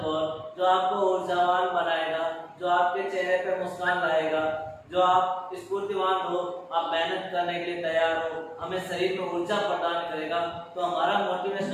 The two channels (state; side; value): identical; both; correlation 1.00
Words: कोट जो आपको ऊर्जावान बनाएगा, जो आपके चेहरे पे मुस्कान लाएगा, जो आप स्फूर्तिवान हो, आप मेहनत करने के लिए तैयार हो, हमें शरीर में ऊर्जा प्रदान करेगा। तो हमारा